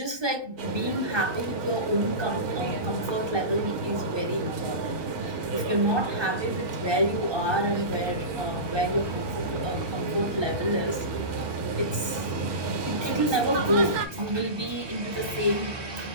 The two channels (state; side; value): late; left; 1.2 ms